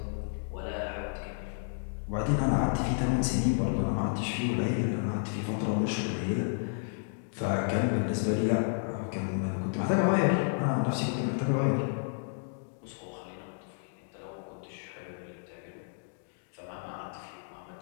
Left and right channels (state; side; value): silent; right; digital silence